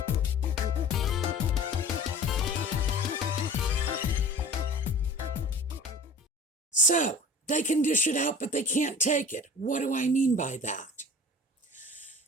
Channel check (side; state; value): both; normal; correlation 0.41